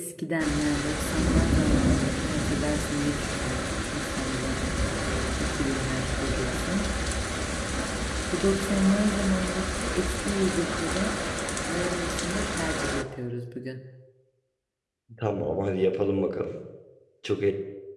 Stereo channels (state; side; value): identical; both; correlation 1.00